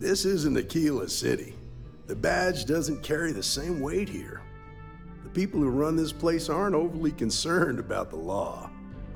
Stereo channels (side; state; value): both; identical; correlation 1.00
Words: This isn't Aquila City. The badge doesn't carry the same weight here. The people who run this place aren't overly concerned about the law.